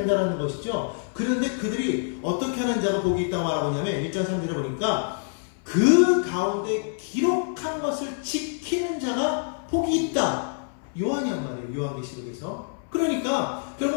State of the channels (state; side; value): silent; right; 59 dB below the other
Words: 것이죠. 그런데 그들이 어떻게 하는 자가 복이 있다고 말하고 있냐면 1장 3절에 보니까 그 가운데 기록한 것을 지키는 자가 복이 있다. 요한이란 말이에요. 요한계시록에서. 그러니까